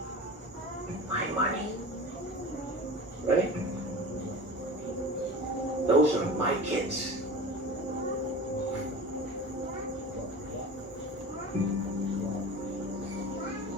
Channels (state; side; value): normal; both; correlation 0.35